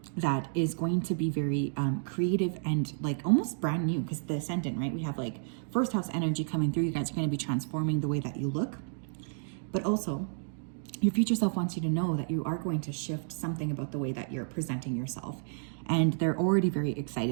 that is going to be very creative and like almost brand new, because the Ascendant, right? We have like first house energy coming through. You guys are going to be transforming the way that you look, but also your future self wants you to know that you are going to shift something about the way that you're presenting yourself. And they're already very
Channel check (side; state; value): left; silent; digital silence